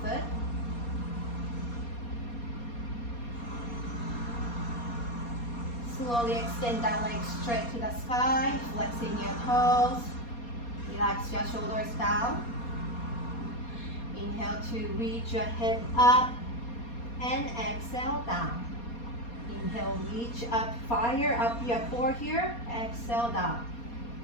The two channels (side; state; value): right; late; 4.2 ms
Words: foot. Slowly extend that leg straight to the sky, flexing your toes. Relax your shoulders down. Inhale to reach your head up and exhale down. Inhale, reach up, fire up your core here, exhale down.